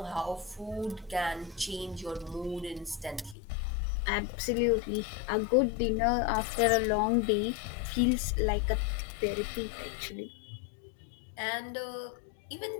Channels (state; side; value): drops out; right; at 3.4 s